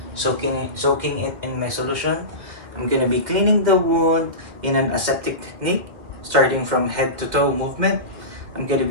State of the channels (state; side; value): late; left; 2.2 ms